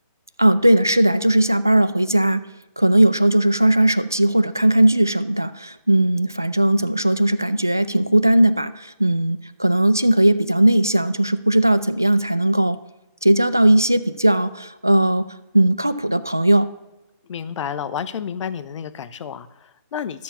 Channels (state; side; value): inverted; both; correlation -0.95